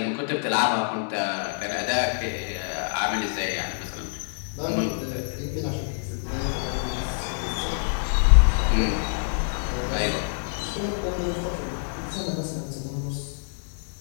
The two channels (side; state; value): right; silent; digital silence